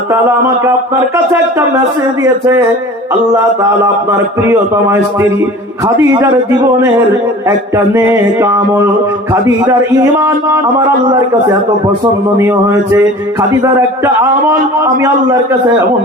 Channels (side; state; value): both; normal; correlation 0.41